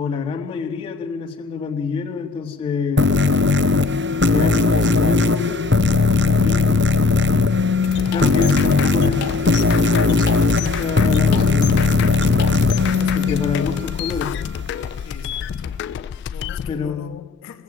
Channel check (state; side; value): quieter; right; 3.9 dB